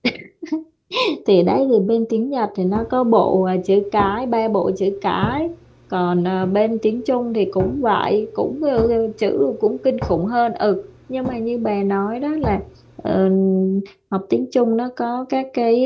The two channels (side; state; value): both; identical; correlation 1.00